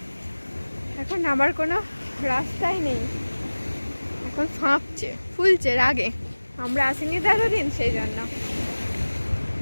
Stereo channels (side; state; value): both; inverted; correlation -1.00